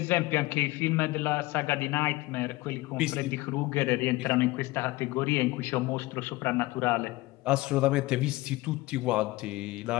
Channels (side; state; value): right; quieter; 20.0 dB